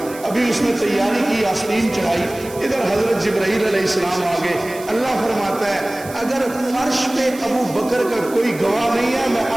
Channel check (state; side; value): noise; right; hiss, 17 dB below the sound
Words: ابھی اس نے تیاری کی، آستین چڑھائی. ادھر حضرت جبرائیل علیہ السلام آگے. اللہ فرماتا ہے اگر فرش پہ ابو بکر کا کوئی گواہ نہیں ہے، میں